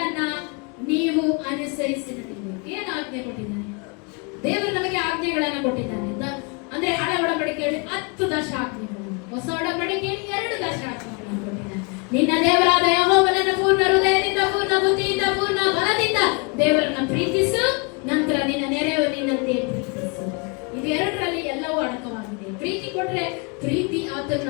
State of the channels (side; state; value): right; quieter; 33.0 dB